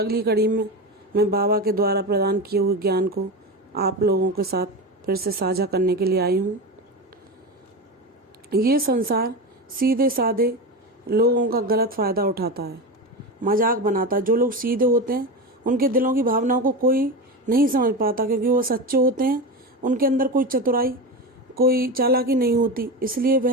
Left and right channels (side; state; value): both; normal; correlation 0.21